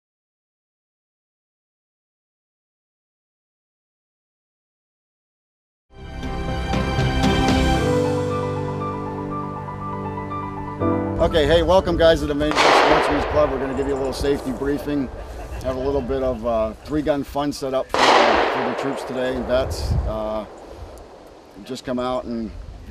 Okay, hey, welcome guys to the Main Sportsman's Club. We're going to give you a little safety briefing, have a little bit of three-gun fun set up for the troops today and vets. Just come out and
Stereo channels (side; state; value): both; identical; correlation 1.00